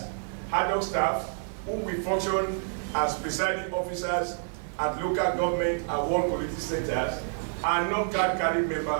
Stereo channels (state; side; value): silent; left; digital silence